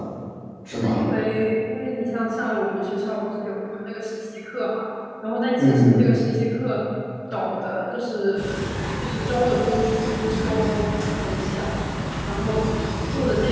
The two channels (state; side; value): identical; both; correlation 1.00